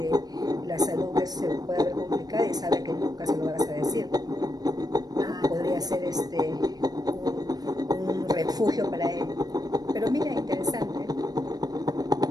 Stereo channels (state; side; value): late; left; 0.19 ms